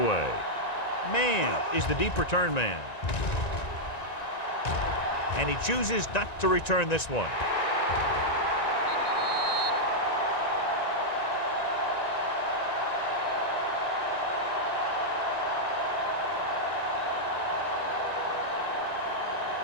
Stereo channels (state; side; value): late; right; 1.9 ms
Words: Mann is the deep return man. And he chooses not to return this one.